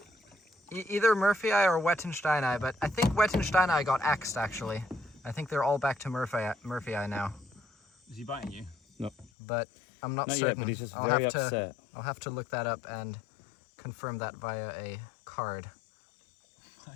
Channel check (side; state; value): right; drops out; at 9.3 s